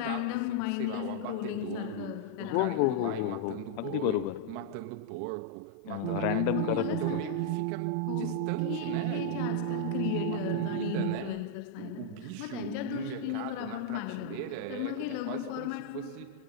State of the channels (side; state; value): both; different; correlation -0.01